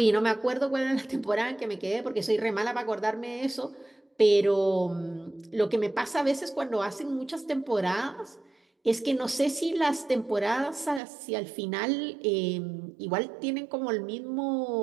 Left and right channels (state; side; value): drops out; left; at 11.0 s